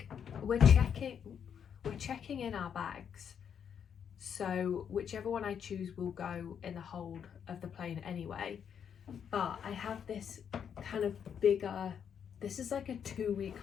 we're checking in our bags, so whichever one I choose will go in the hold of the plane anyway. But I have this kind of bigger, this is like a 2-week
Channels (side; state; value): right; quieter; 7.9 dB